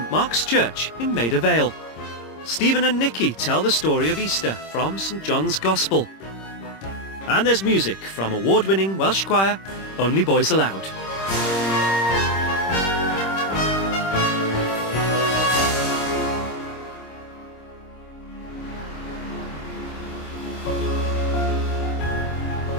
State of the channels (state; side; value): late; right; 26 ms